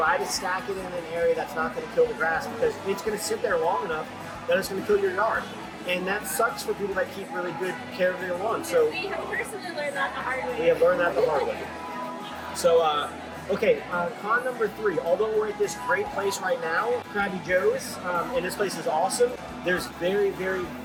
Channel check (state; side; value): identical; both; correlation 1.00